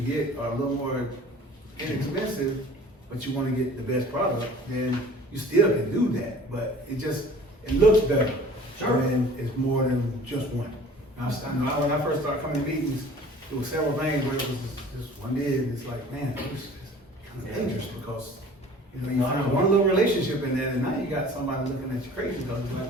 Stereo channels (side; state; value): both; normal; correlation 0.47